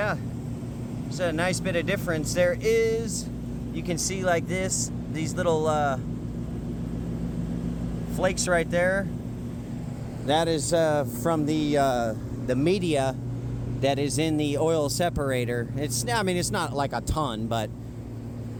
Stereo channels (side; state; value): both; identical; correlation 1.00